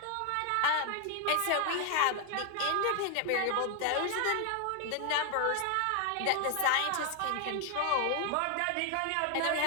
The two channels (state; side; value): different; both; correlation 0.00